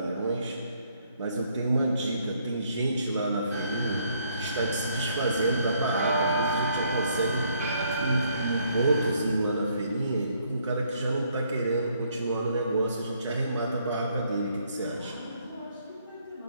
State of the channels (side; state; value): both; inverted; correlation -0.68